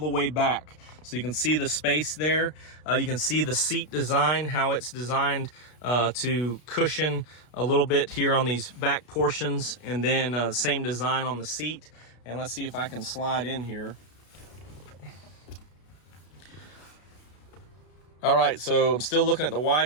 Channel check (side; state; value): right; late; 33 ms